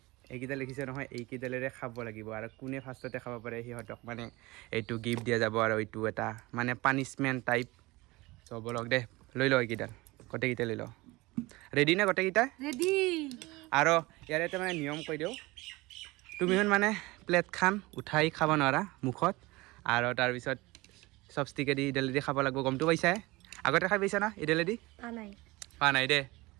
এইকেইটা লিখিছে নহয় এইকেইডালেৰে খাব লাগিব আৰু কোনে ফাৰ্ষ্টতে খাব পাৰে সিহঁতক মানে এইটো গিফট দিয়া যাব আৰু এইটো এটা মানে পানিশমেণ্ট টাইপ। চ' বলক দে লৈ লওঁ এইকেইডাল গোটেইকেইটা লৈ লওঁ। ৰেডি না গোটেইকেইটা ৰেডি আৰু ইয়াৰ এটা মানে নিয়ম কৈ দিওঁ তুমি মানে প্লেটখন উঠাই খাব নোৱাৰা মুখত আৰু তাৰপিছত চপষ্টিকেদি ইডালেদি খাব লাগিব গমটো পাইছা আগতে খাই পাইছা না ইডালেদি পোৱা নাই দে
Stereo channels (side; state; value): left; quieter; 21.8 dB